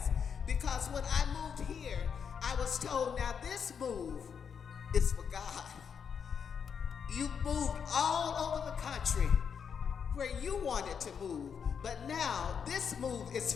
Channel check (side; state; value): right; quieter; 6.9 dB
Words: because when I moved here, I was told, now this move is for God. You moved all over the country where you wanted to move, but now this move is